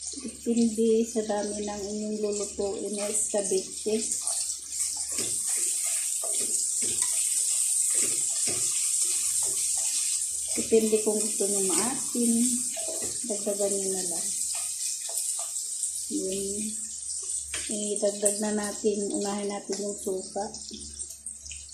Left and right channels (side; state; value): both; identical; correlation 1.00